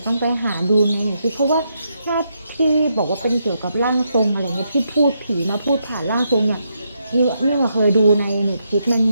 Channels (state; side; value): inverted; both; correlation -0.80